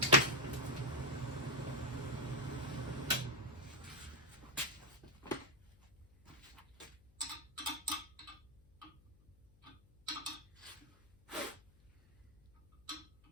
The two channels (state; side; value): noise; left; hum, 28 dB below the sound